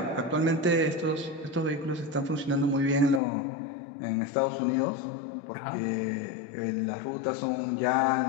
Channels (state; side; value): drops out; right; at 3.2 s